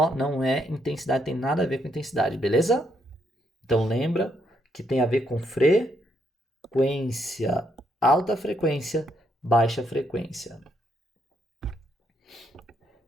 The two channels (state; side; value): normal; both; correlation 0.75